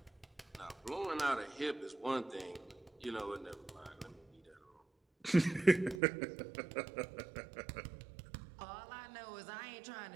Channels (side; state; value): left; drops out; at 6.0 s